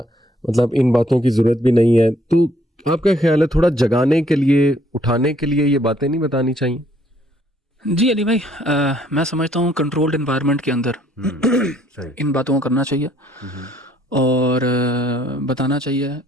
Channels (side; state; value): both; normal; correlation 0.65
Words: مطلب ان باتوں کی ضرورت بھی نہیں ہے. تو آپ کا خیال ہے تھوڑا جگانے کے لیے، اٹھانے کے لیے یہ باتیں نہیں بتانی چاہیے؟ جی علی بھائی، میں سمجھتا ہوں کنٹرولڈ انوائرمنٹ کے اندر ان باتوں کو کرنا چاہیے اور بتانا چاہیے